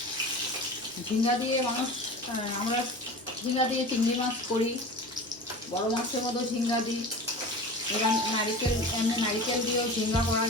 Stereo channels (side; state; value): both; normal; correlation 0.34